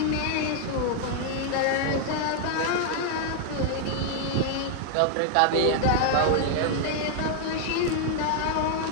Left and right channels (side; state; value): both; different; correlation 0.00